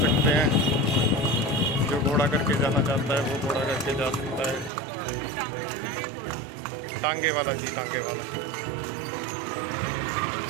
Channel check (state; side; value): drops out; left; at 4.7 s